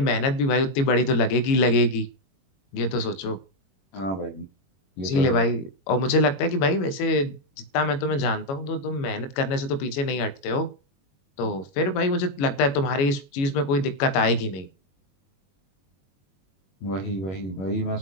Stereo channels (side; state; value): right; late; 21 ms